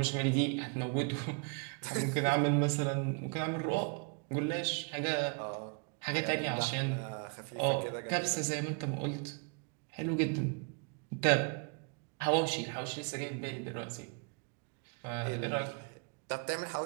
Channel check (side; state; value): left; quieter; 37.0 dB